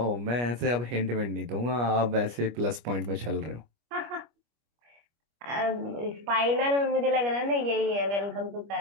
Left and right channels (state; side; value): late; left; 25 ms